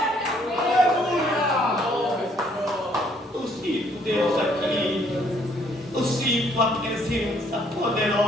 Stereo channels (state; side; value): normal; both; correlation 0.65